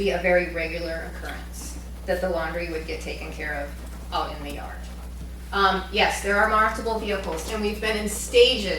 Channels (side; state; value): both; identical; correlation 1.00